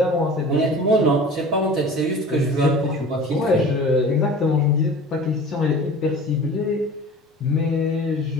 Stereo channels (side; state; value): both; normal; correlation 0.40